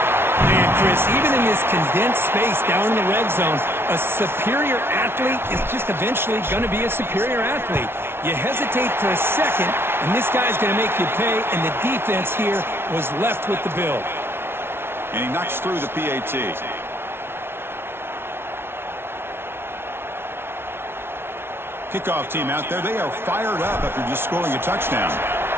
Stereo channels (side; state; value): left; late; 0.12 ms